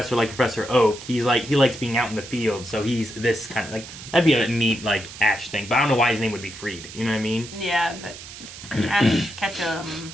like Professor Oak. He likes being out in the field, so he's this kind of like that'd be a neat like Ash thing. But I don't know why his name would be Freed. You know what I mean? Yeah, but Ash Ketchum.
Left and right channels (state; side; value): noise; right; hiss, 14 dB below the sound